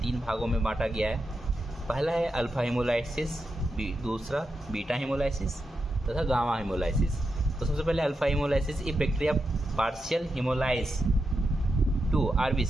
3 भागों में बांटा गया है। पहला है अल्फा हेमोलाइसिस, दूसरा बीटा हेमोलाइसिस तथा गामा हेमोलाइसिस। तो सबसे पहले अल्फा हेमोलाइसिस, ये bacteria partial haemolyse to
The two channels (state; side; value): normal; both; correlation 0.87